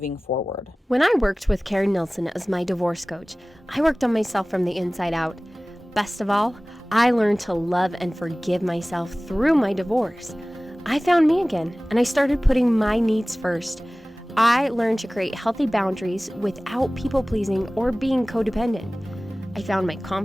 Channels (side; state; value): both; normal; correlation 0.98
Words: forward. When I worked with Karen Nelson as my divorce coach, I worked on myself from the inside out. Best of all, I learned to love and forgive myself through my divorce. I found me again, and I started putting my needs first. I learned to create healthy boundaries without people-pleasing or being codependent. I found my